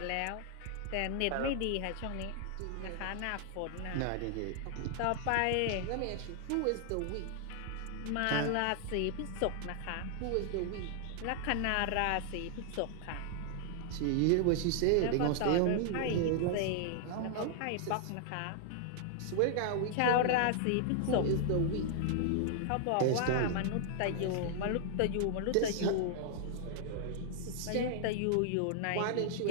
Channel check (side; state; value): both; different; correlation 0.00